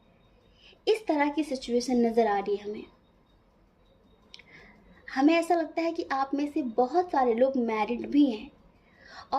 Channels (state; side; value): identical; both; correlation 1.00